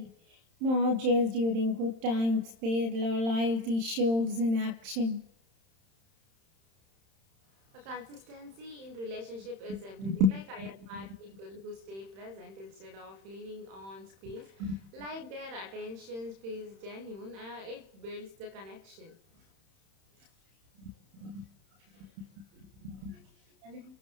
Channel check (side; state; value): left; late; 31 ms